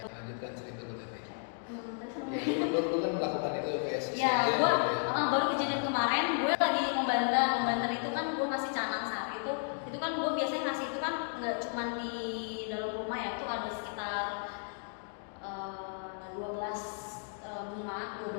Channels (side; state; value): right; silent; 55 dB below the other